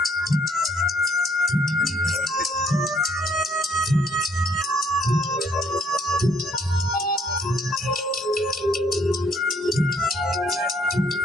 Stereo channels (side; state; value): both; normal; correlation 0.66